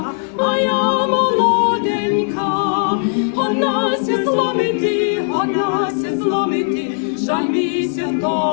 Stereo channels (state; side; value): silent; right; digital silence